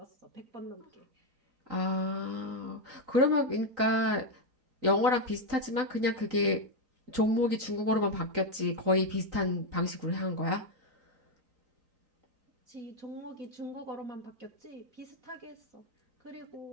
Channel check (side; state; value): left; late; 3.9 ms